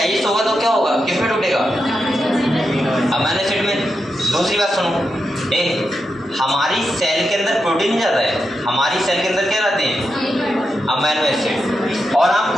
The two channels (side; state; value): both; normal; correlation 0.87